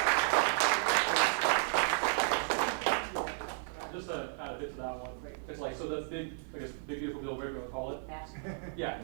Just to add a bit to that one, it's so the big beautiful bill, whatever you want to call it. Yeah,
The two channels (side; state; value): left; silent; 55 dB below the other